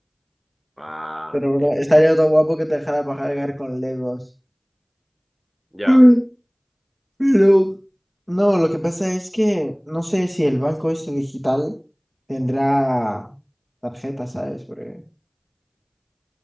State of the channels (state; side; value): identical; both; correlation 1.00